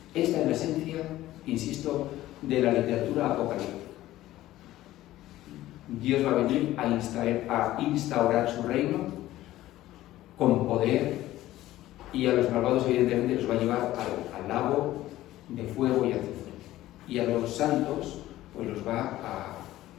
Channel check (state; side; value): quieter; right; 15.2 dB